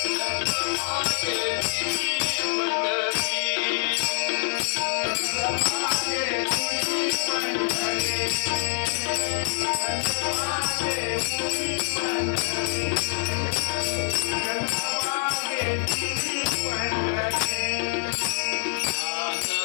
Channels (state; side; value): silent; right; 61 dB below the other